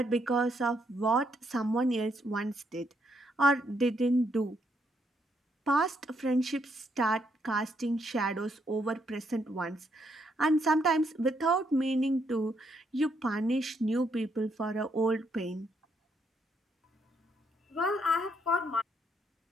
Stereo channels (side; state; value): both; normal; correlation 0.75